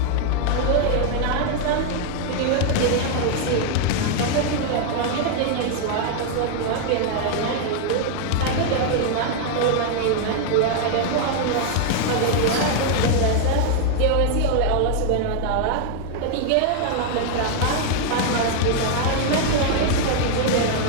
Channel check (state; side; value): different; both; correlation 0.00